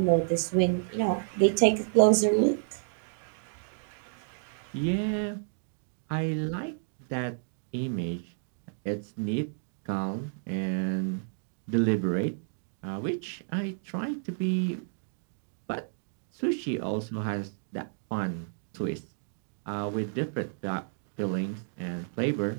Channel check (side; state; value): left; silent; digital silence